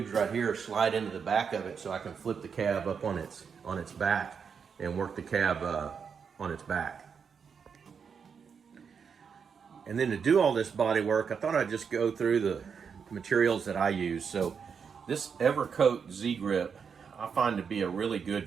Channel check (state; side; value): quieter; left; 6.4 dB